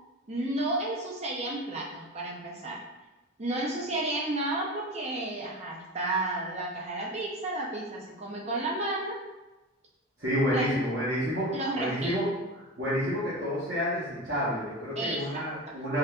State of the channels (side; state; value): both; normal; correlation 0.27